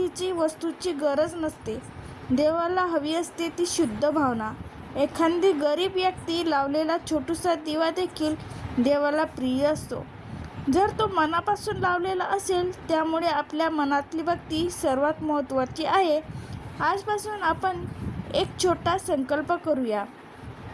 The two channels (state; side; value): identical; both; correlation 1.00